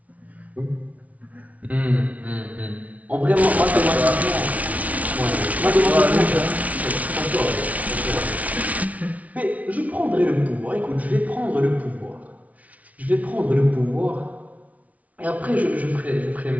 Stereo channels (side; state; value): left; late; 0.069 ms